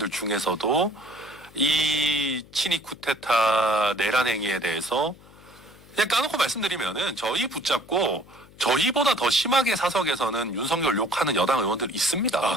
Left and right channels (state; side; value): noise; left; hum, 24 dB below the sound